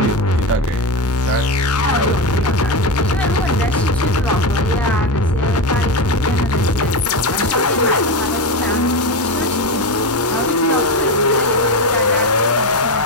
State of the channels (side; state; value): both; normal; correlation 0.16